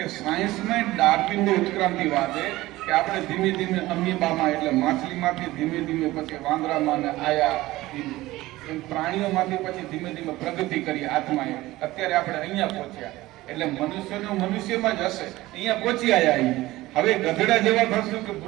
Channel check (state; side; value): quieter; left; 17.9 dB